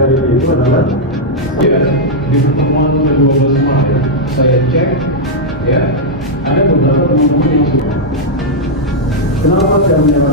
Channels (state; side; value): normal; both; correlation -0.04